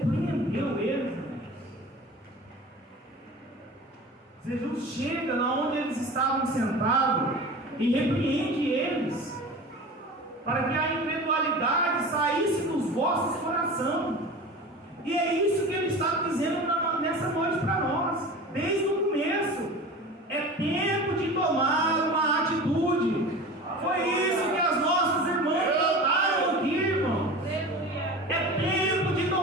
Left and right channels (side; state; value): both; normal; correlation 0.35